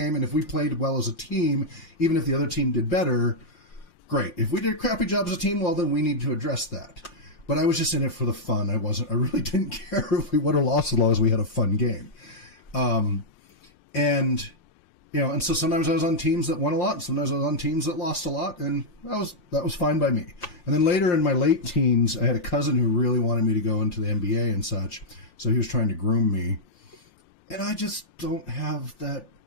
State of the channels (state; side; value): late; left; 3.4 ms